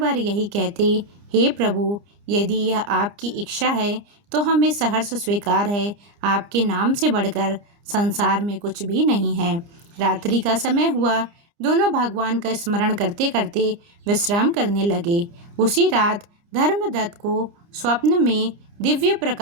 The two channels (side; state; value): left; late; 29 ms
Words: यही कहते, हे प्रभु, यदि यह आपकी इच्छा है तो हमें सहर्ष स्वीकार है। आपके नाम से बढ़कर संसार में कुछ भी नहीं है। रात्रि का समय हुआ। दोनों भगवान का स्मरण करते करते विश्राम करने लगे। उसी रात धर्मदत्त को स्वप्न में दिव्य